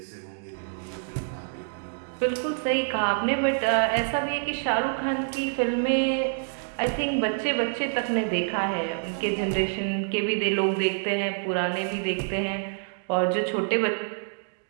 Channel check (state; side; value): silent; left; digital silence